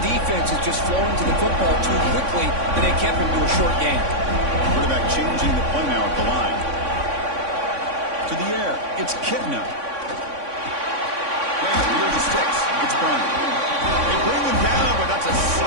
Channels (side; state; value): left; late; 3.6 ms